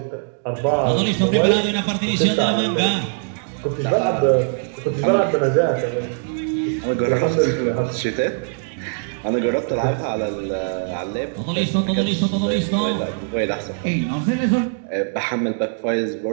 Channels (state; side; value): silent; left; digital silence